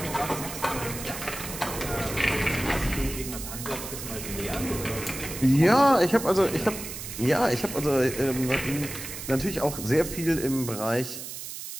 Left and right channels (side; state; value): right; noise; hiss, 9 dB below the sound